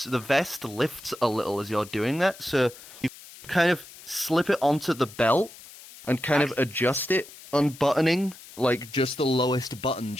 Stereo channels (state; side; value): noise; left; hiss, 18 dB below the sound